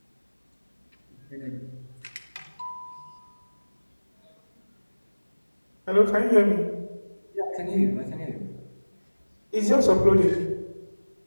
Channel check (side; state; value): both; inverted; correlation -1.00